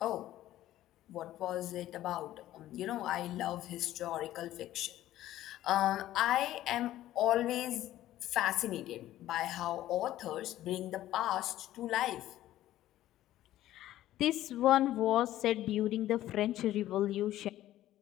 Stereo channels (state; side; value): quieter; right; 13.9 dB